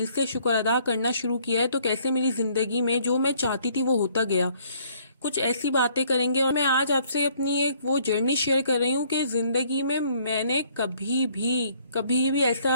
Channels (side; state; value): both; inverted; correlation -0.62